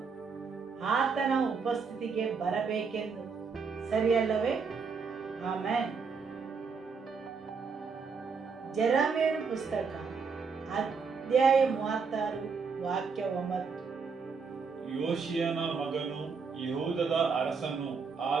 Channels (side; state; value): left; quieter; 5.2 dB